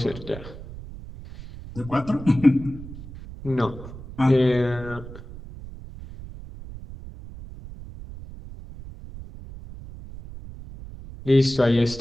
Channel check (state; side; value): noise; right; rumble, 14 dB below the sound